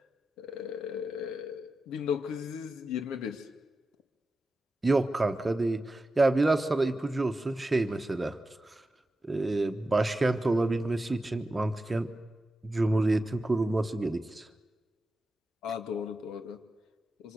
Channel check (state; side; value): normal; both; correlation 0.91